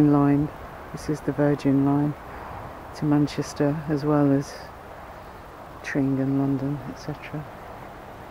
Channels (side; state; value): both; identical; correlation 1.00